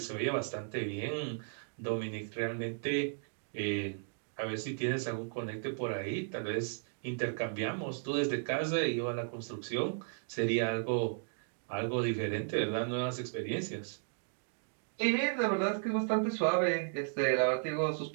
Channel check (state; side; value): silent; left; digital silence